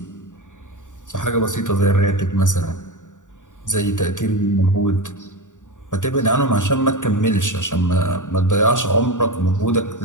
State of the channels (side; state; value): right; late; 0.86 ms